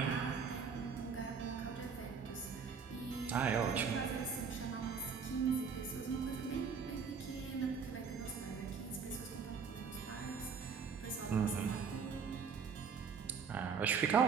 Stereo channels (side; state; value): left; quieter; 6.0 dB